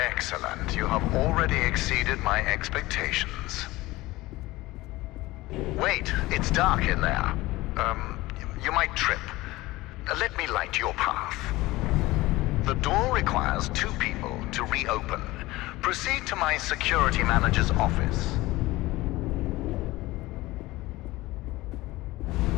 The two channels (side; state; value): right; quieter; 19.2 dB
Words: You have already exceeded my expectations. Wait, it's dark in there. You might trip. Let me light your path. The door requires 2 people to reopen. Proceed to my security manager's office.